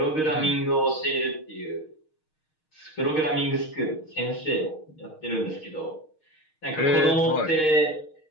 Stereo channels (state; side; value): late; right; 6.5 ms